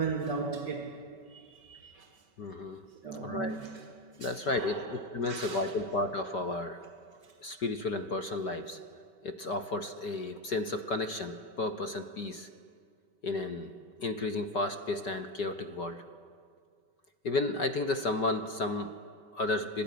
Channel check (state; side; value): late; right; 5.2 ms